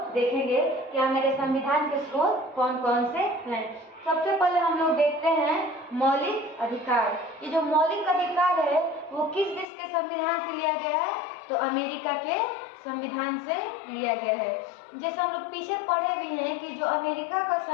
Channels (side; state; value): right; drops out; at 9.7 s